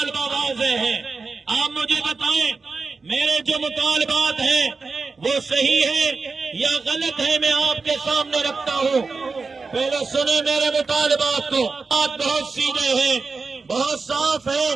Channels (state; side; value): quieter; left; 4.3 dB